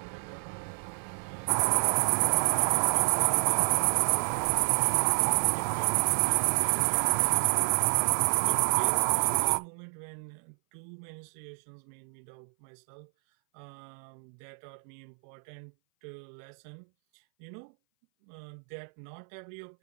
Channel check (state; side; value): silent; left; 59 dB below the other